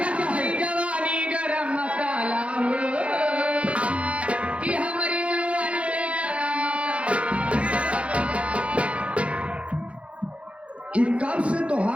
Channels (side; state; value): left; late; 0.062 ms